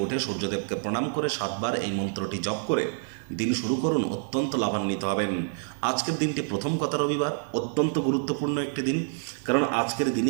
উঠে সূর্যদেবকে প্রণাম করে 7 বার এই মন্ত্রটি জপ করে দিন শুরু করুন, অত্যন্ত লাভান্বিত হবেন। আজকের দিনটি প্রথম কথা রবিবার, অত্যন্ত গুরুত্বপূর্ণ একটি দিন, কারণ আজকের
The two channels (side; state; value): left; silent; digital silence